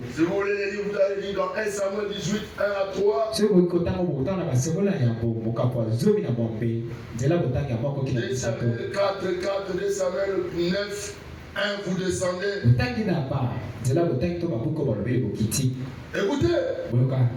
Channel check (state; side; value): identical; both; correlation 1.00